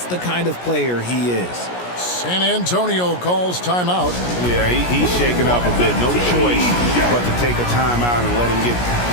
the kind of player he is. San Antonio calls timeout. Yeah, he's shaken up a bit. No choice but to take a timeout and let him get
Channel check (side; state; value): right; late; 17 ms